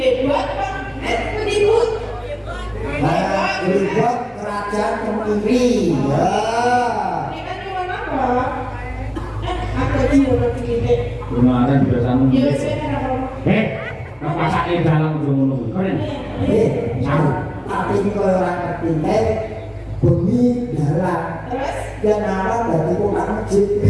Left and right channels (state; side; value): identical; both; correlation 1.00